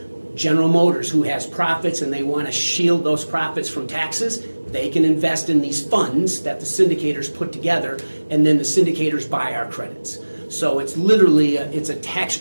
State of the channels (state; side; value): inverted; both; correlation -1.00